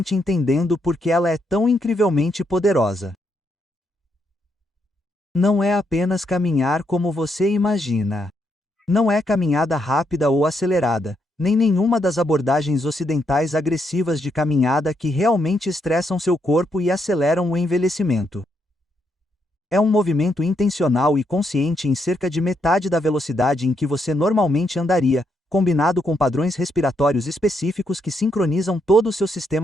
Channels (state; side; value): normal; both; correlation 0.78